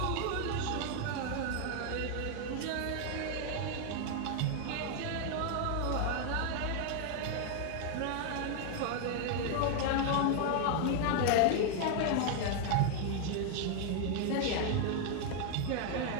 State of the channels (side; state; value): both; different; correlation 0.00